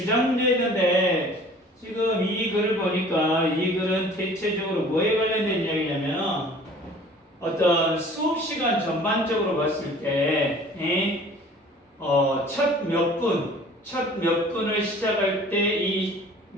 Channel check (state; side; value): normal; both; correlation 0.49